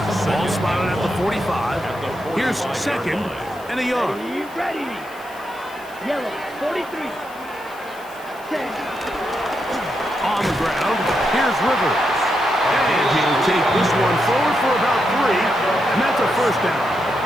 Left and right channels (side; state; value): left; noise; hiss, 23 dB below the sound